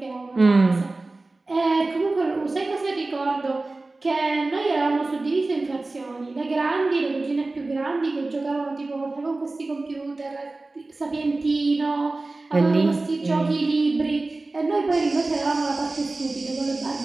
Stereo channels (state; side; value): quieter; left; 3.2 dB